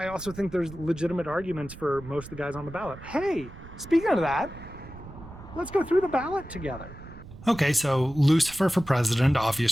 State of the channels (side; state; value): right; noise; rumble, 16 dB below the sound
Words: also think there's legitimate arguments for most of the guys on the ballot. Hey, speaking of that, let's go through the ballot together. Okay, so Lucifer for president,